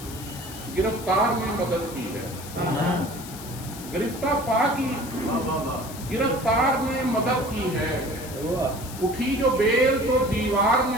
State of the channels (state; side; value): noise; left; hiss, 14 dB below the sound